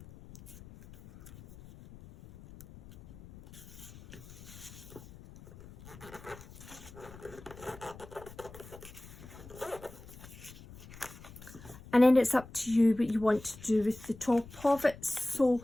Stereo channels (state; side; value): noise; left; rumble, 18 dB below the sound